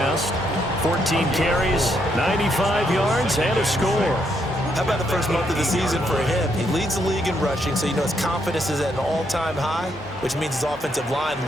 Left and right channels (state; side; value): normal; both; correlation 0.76